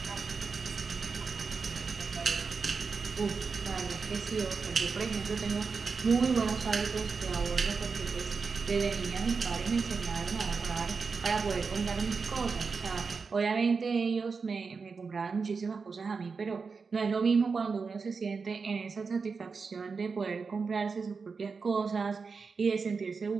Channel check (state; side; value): quieter; left; 4.9 dB